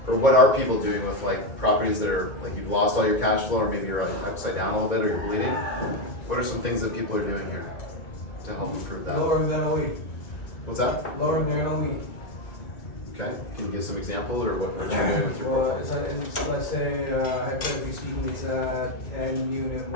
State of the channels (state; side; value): late; right; 2.2 ms